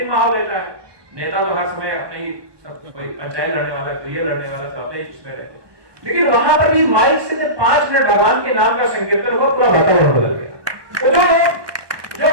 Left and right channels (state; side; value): late; left; 1.2 ms